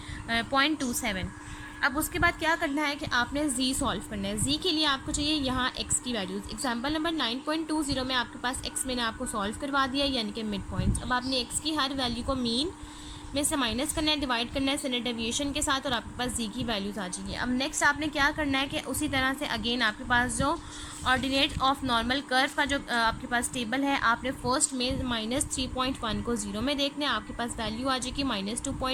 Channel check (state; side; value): identical; both; correlation 1.00